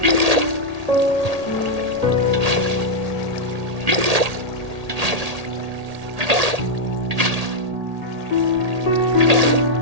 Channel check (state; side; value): late; left; 1.8 ms